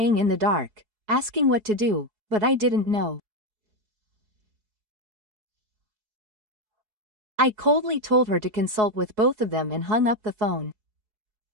in the dark, asking what to do, but I didn't know. I coldly told her to consult with both of them and hung up the phone.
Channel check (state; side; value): late; left; 4.7 ms